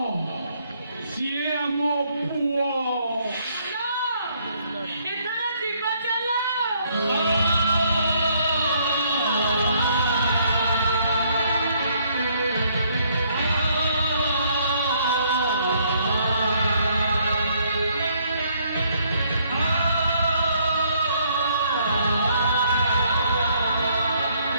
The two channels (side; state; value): both; inverted; correlation -0.68